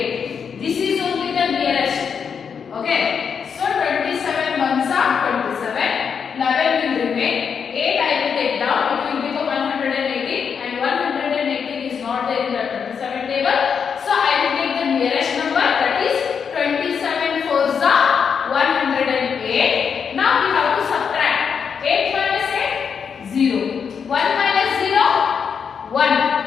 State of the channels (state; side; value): quieter; right; 6.7 dB